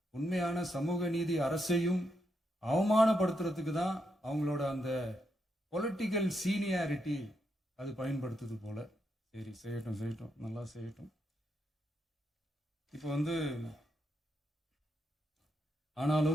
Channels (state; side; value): normal; both; correlation 0.81